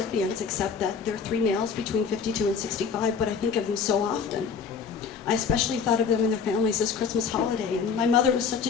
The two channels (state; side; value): quieter; right; 6.0 dB